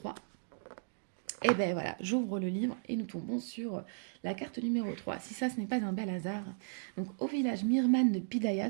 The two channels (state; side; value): silent; left; digital silence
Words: Et ben voilà, j'ouvre le livre et nous tombons sur la carte numéro 3. Si ça, ce n'est pas un bel hasard. Donc, au village Mirman de Pidaya